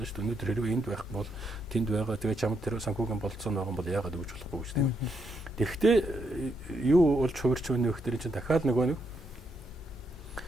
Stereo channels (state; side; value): normal; both; correlation 0.78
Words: ш. Өнөөдөр хэрвээ энд байх бол тэнд байгаа. Тэгээ чамд тэр санхүүгийн болцоо байгаа бол яагаад өгч болохгүй гэж тийм. Тэгэхдээ юу болж хувирч өгнө гэхээр чинь дахиад нөгөө нэг